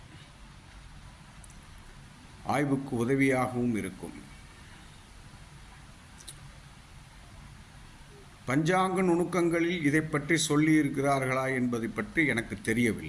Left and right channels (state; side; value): identical; both; correlation 1.00